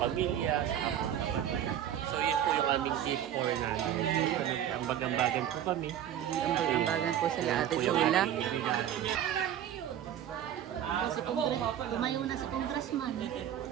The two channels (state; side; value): quieter; left; 10.5 dB